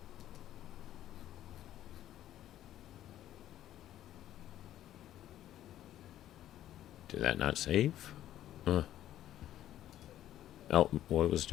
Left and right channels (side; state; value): right; quieter; 12.6 dB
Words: Did that not save? Oh, what it was